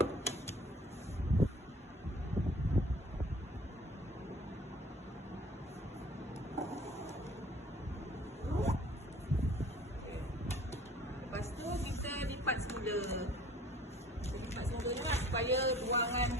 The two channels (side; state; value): both; normal; correlation 0.51